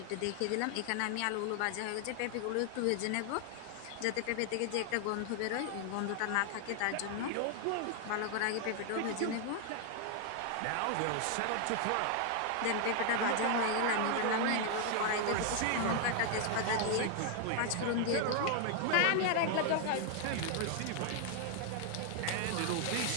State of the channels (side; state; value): both; different; correlation 0.00